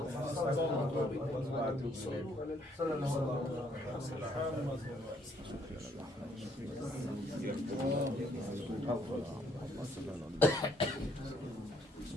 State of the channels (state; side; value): normal; both; correlation 0.67